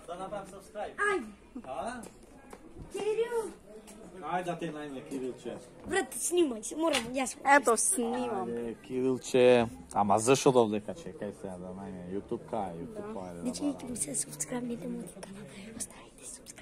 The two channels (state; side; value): identical; both; correlation 1.00